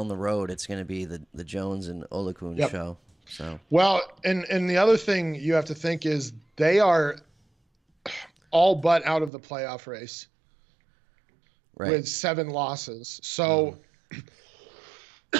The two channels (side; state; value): left; drops out; at 9.3 s